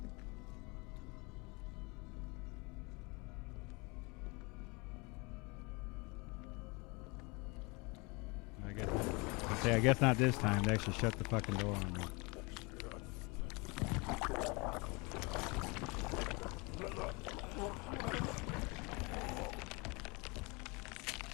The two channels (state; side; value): quieter; right; 27.9 dB